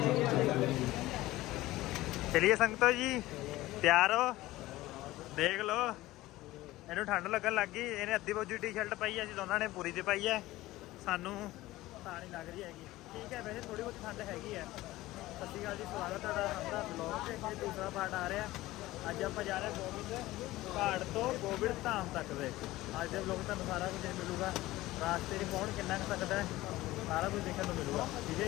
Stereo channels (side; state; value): right; quieter; 17.5 dB